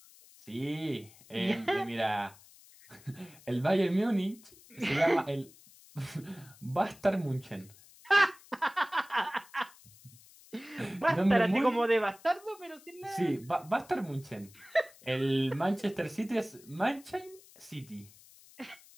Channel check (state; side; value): noise; left; hiss, 24 dB below the sound